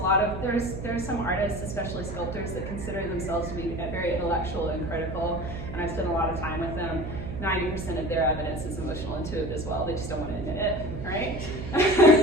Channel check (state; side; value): noise; right; hum, 7 dB below the sound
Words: some artists, especially sculptors, that consider themselves to be very intellectual and critical, and I've spent a lot of time with them. 90% of their evidence is emotional intuitive as well. They just don't want to admit it, right?